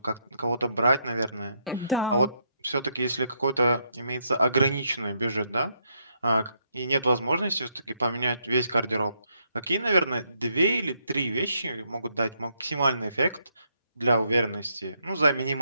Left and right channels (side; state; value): both; inverted; correlation -0.76